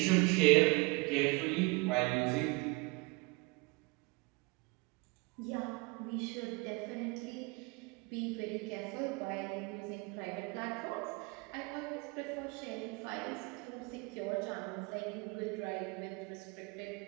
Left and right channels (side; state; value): left; quieter; 26.2 dB